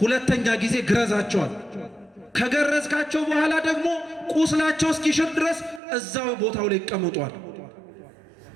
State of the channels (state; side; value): drops out; left; at 5.8 s